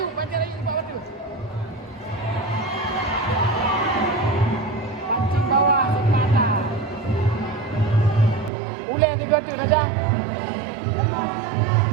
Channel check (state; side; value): drops out; left; at 8.5 s